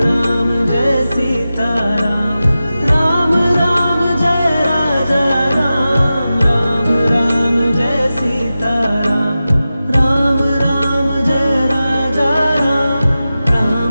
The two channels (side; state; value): both; inverted; correlation -0.94